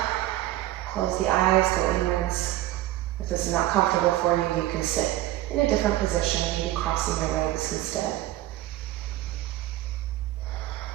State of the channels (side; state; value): left; quieter; 15.3 dB